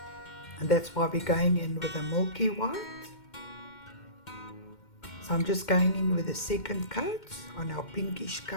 that's why we're going in with the Milky White. So I'm just going in with a second coat on our pinkish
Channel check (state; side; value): late; right; 2.1 ms